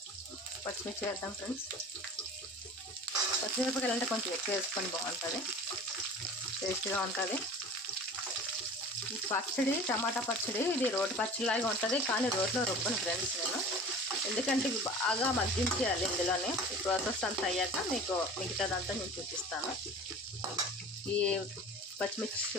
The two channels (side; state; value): both; normal; correlation 0.39